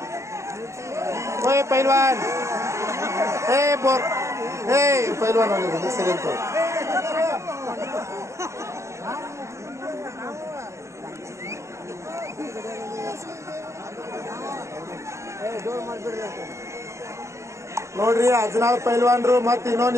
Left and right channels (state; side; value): late; left; 0.14 ms